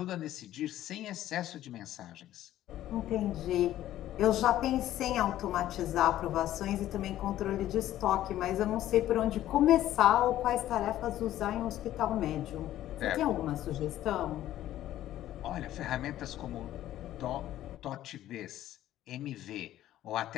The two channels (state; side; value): quieter; right; 13.3 dB